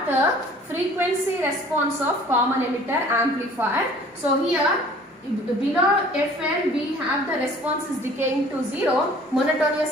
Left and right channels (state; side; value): normal; both; correlation 0.51